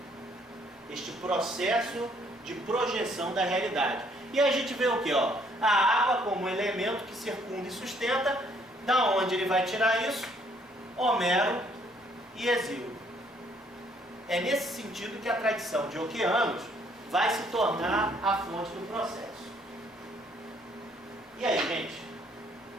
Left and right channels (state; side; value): normal; both; correlation 0.65